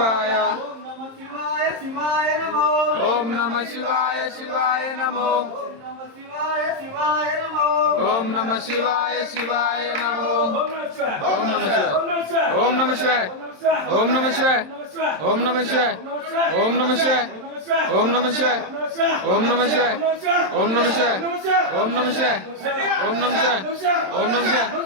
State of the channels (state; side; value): late; left; 27 ms